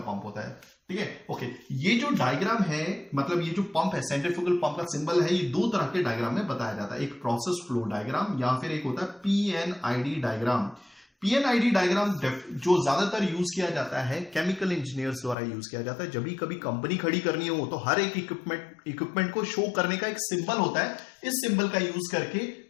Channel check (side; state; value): right; drops out; at 15.4 s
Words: पंप होता है। ठीक है, ओके, ये जो डायग्राम है, मतलब ये जो पंप है, सेंट्रीफ्यूगल पंप का सिंबल है, ये दो तरह के डायग्राम में बताया जाता है। एक प्रोसेस फ्लो डायग्राम या फिर एक होता है पीएनआईडी डायग्राम। पीएनआईडी डायग्राम जो ज्यादातर यूज किया जाता है केमिकल इंजीनियर्स द्वारा यूज किया जाता है। जब भी कभी कंपनी खड़ी करनी हो तो हर एक इक्विपमेंट को शो करने का एक सिंबल होता है। इस सिंबल का यूज करके